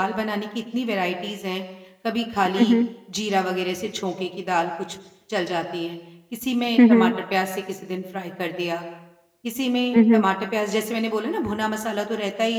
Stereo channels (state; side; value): identical; both; correlation 1.00